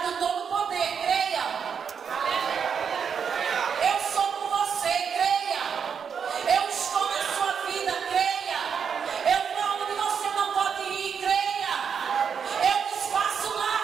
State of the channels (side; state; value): left; quieter; 6.9 dB